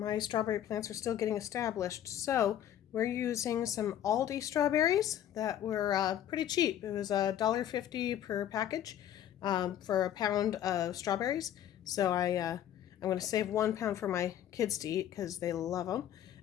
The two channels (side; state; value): right; quieter; 10.9 dB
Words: strawberry plants are still getting established. So we're using some Aldi strawberries that were pretty cheap. It was $1.50 per package for a pound of strawberries. So I'm going to save 1 pound for my kids to eat because they love them.